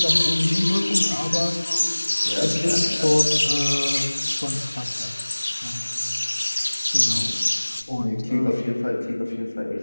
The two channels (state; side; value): inverted; both; correlation -1.00